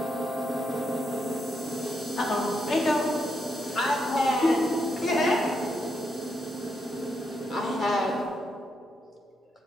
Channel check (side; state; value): both; normal; correlation 0.81